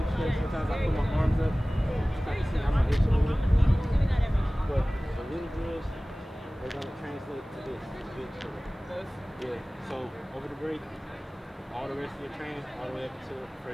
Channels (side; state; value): both; normal; correlation 0.98